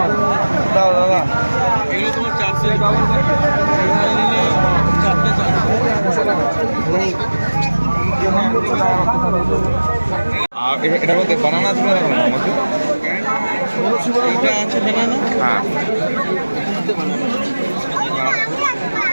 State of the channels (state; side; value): inverted; both; correlation -1.00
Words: হবে। দাও দাদা, এগুলো তোমার 400 টাকা নিলে 4টে 400। এটা বলতে বানানা আছে না আমাকে? এটা আছে বানানা। হ্যাঁ